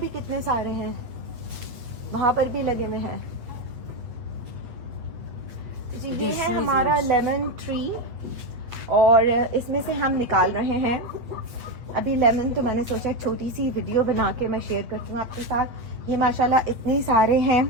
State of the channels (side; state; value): left; late; 8.4 ms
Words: कितने सारे हैं, वहां पर भी लगे हुए हैं। जी ये है हमारा लेमन ट्री और इसमें से हम निकाल रहे हैं अभी लेमन। तो मैंने सोचा छोटी सी वीडियो बना के मैं शेयर करती हूँ आपके साथ। ये माशाल्लाह इतने सारे हैं